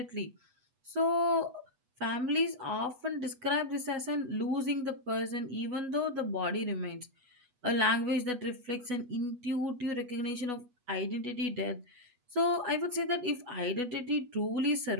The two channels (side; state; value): left; late; 8.1 ms